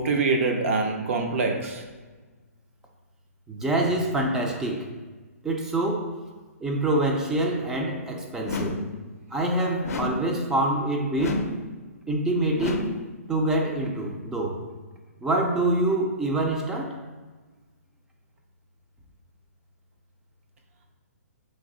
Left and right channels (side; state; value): both; normal; correlation -0.15